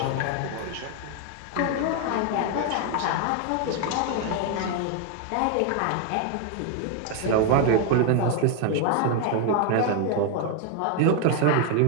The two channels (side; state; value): both; different; correlation 0.01